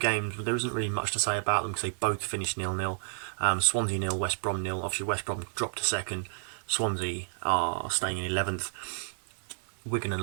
there isn't really much to say about them because they both finished 0-0. Swansea 0, West Brom 0. Obviously West Brom dropped to 2nd. Swansea are staying in 11th. Wigan and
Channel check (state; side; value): silent; left; digital silence